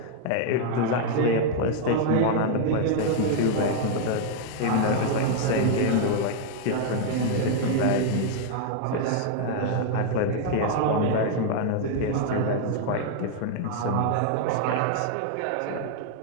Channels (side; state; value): both; different; correlation 0.00